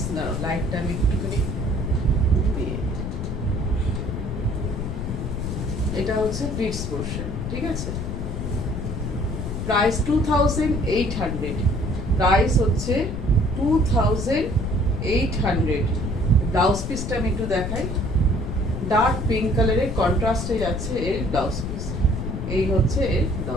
না লাইটটা আমি একটুখানি দিয়ে, এটা হচ্ছে প্লিটস পোর্শন, ঠিক আছে। প্রাইস 2800, প্রাইস হচ্ছে 2800। ব্লাউজ পিসটা আমি একটু দেখাই, ডার্ক পিঙ্ক কালারের কন্ট্রাস্টে যাচ্ছে এর ব্লাউজ পিস। এই হচ্ছে এর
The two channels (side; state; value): left; noise; rumble, 4 dB below the sound